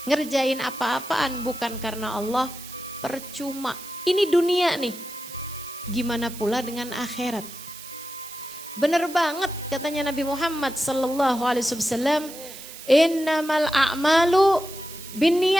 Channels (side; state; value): right; noise; hiss, 14 dB below the sound